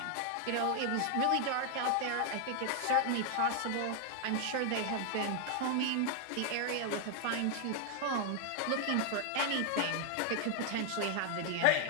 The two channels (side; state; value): both; different; correlation 0.00